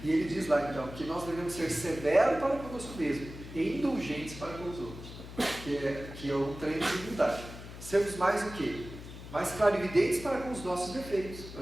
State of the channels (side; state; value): left; noise; hum, 13 dB below the sound